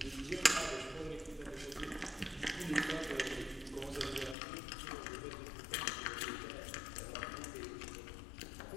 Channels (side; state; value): right; drops out; at 4.4 s